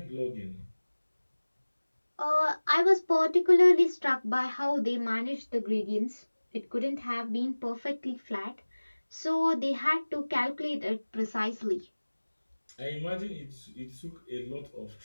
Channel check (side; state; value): both; inverted; correlation -1.00